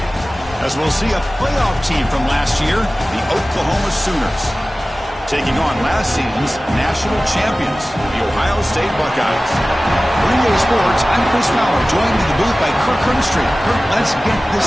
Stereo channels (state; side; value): normal; both; correlation 0.97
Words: As we'll see a playoff team from last year, the Oklahoma Sooners, taking on last season's national champions, the Ohio State Buckeyes. For EA Sports, I'm Chris Fowler, joined in the booth by Kirk Herbstreit. Kirk, let's get